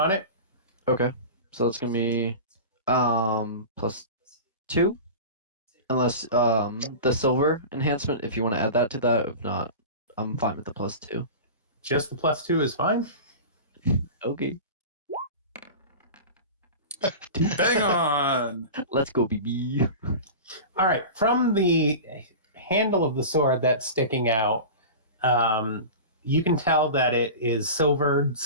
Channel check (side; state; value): both; inverted; correlation -0.31